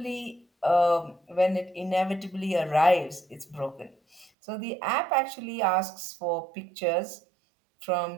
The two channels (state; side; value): drops out; left; at 4.3 s